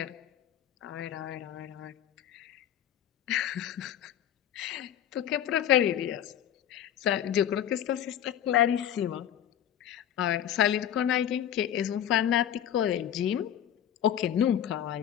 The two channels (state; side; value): quieter; right; 10.2 dB